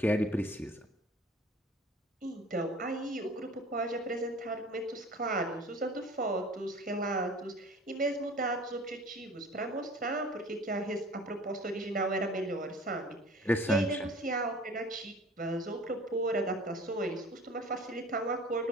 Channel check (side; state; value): both; normal; correlation 0.45